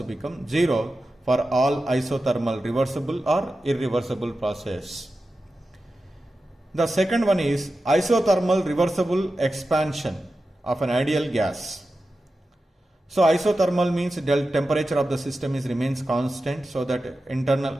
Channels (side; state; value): both; normal; correlation 0.92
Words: become 0 for all isothermal reversible or irreversible process. The second one is isothermal reversible expansion of an ideal gas. So isothermal means temperature of the system remains constant, so that